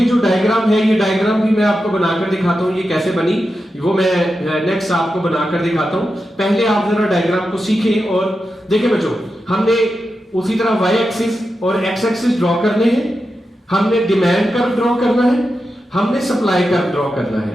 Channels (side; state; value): both; normal; correlation 0.89